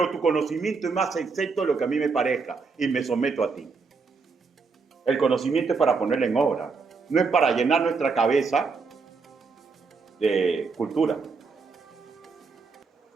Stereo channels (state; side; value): quieter; left; 4.7 dB